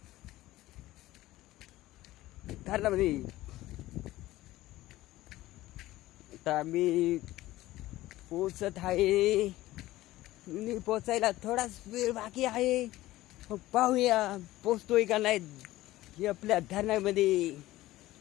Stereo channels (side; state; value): right; quieter; 16.6 dB